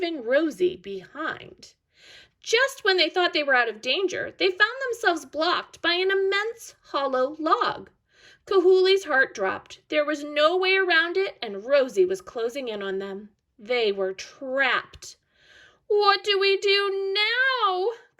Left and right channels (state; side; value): identical; both; correlation 1.00